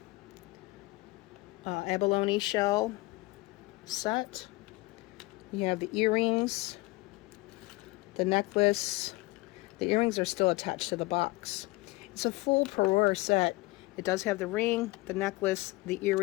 abalone shell set. You have the earrings, the necklace. The earrings are still attached to the box. It's a full parure set. It does have the ring, the necklace, the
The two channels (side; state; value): right; quieter; 22.1 dB